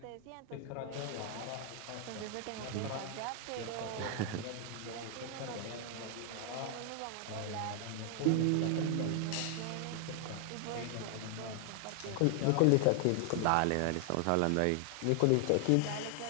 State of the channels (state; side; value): different; both; correlation 0.00